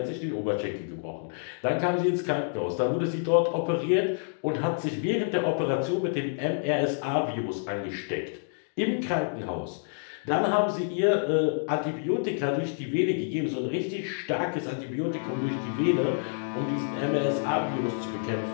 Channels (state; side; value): silent; right; digital silence